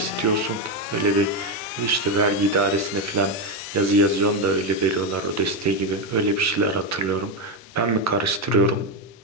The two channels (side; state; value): both; normal; correlation 0.08